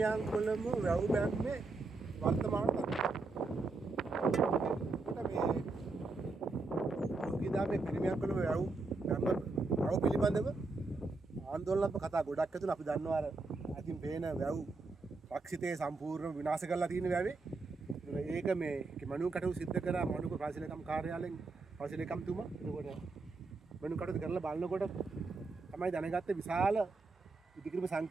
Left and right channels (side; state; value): left; quieter; 3.7 dB